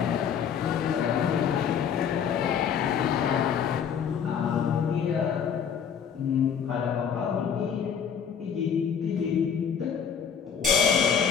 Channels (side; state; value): right; quieter; 7.7 dB